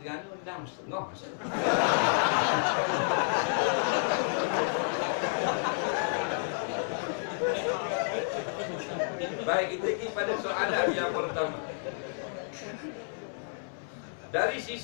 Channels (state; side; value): silent; right; 58 dB below the other